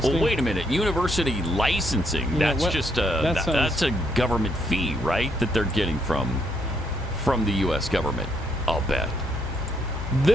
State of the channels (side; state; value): both; normal; correlation 0.73